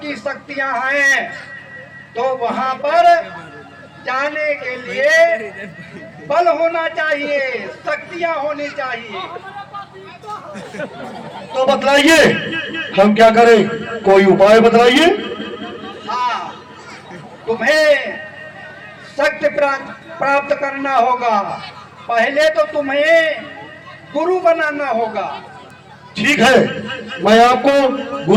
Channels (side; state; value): both; identical; correlation 1.00